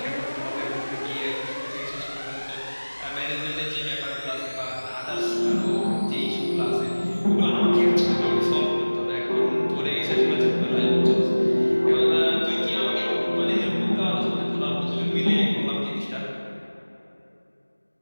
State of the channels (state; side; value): inverted; both; correlation -1.00